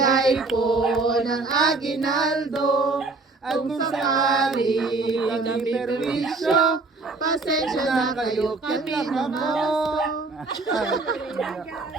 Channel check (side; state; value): left; quieter; 3.6 dB